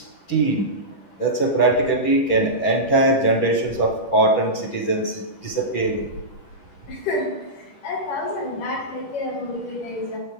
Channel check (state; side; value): late; right; 10 ms